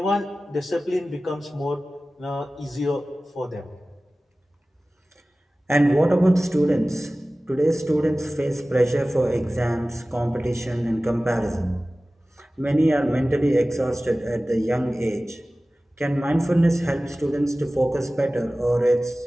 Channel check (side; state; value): both; normal; correlation 0.97